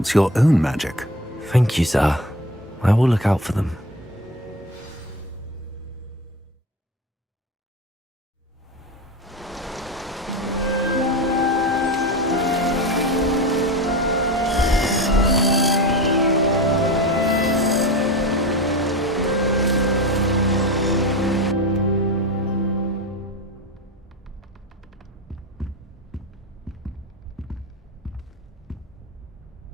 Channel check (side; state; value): both; normal; correlation 0.27